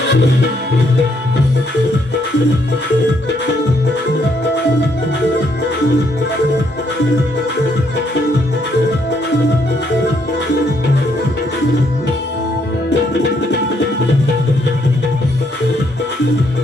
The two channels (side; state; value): both; normal; correlation 0.72